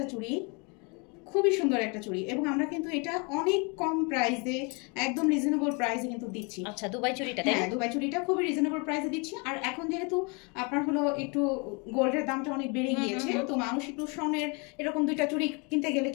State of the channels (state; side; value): quieter; right; 31.9 dB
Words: চুড়ি, খুবই সুন্দর একটা চুড়ি, এবং আমরা কিন্তু এটা অনেক কম প্রাইসে, একদম রিজনেবল প্রাইসে কিন্তু দিচ্ছি। আচ্ছা, দুবাই চুড়িটা? হ্যাঁ, দুবাই চুড়িটা খুবই রিজনেবল প্রাইসে দিচ্ছি। আর এখন যেহেতু আপনার হলো একটু গোল্ডের দামটা অনেক বেড়ে গিয়েছে, তো মানুষ একটু স্বর্ণের এরকম দুইটা চুড়ি কিনতে গেলে